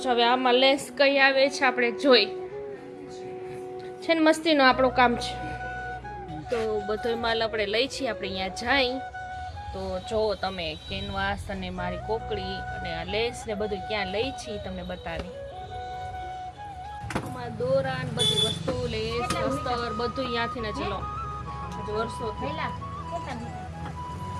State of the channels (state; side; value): identical; both; correlation 1.00